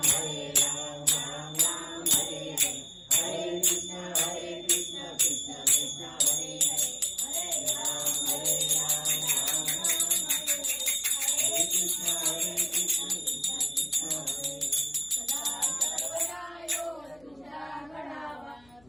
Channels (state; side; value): noise; left; hum, 29 dB below the sound